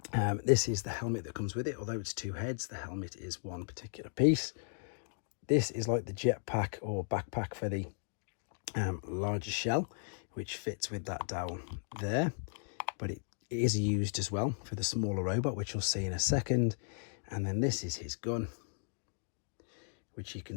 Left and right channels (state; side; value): silent; right; digital silence